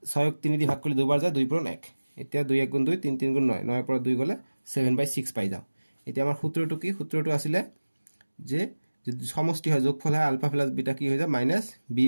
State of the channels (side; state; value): both; inverted; correlation -1.00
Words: 6ক 3 দি ভাগ কৰিলে 2 বাৰ যায় 2 পূৰণ 1 এতিয়া 2 1 গুণ 2 3 3 গুণ 9 9 পৰা 2 গলে 7/6 পাই যাও এতিয়া আমাৰ সূত্ৰটো কি সূত্ৰটো আছিল যে সমষ্টি হয় যোগফল হয় আলফা প্লাস বিটা কি হৈ যায় মাইনাস b